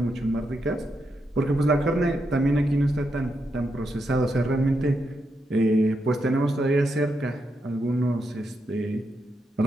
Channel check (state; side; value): normal; both; correlation 0.83